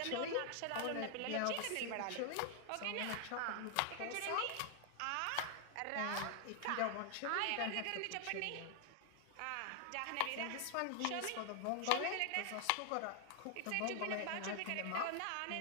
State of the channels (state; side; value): different; both; correlation 0.00